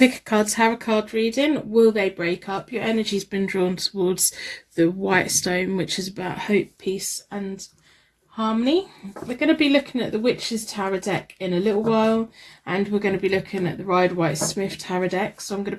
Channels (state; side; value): identical; both; correlation 1.00